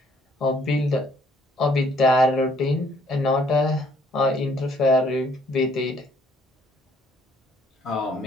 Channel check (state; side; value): normal; both; correlation 0.64